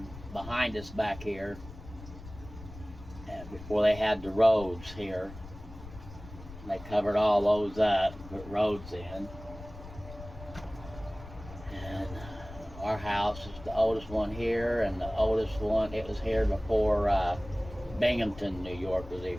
behind us back here, and before they had the roads here. They covered all those up, put roads in. And our house is the oldest one here, and the oldest one, it was here before Binghamton, New York was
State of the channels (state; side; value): noise; left; rumble, 15 dB below the sound